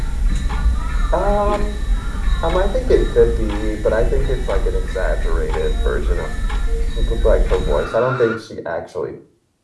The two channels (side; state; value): both; identical; correlation 1.00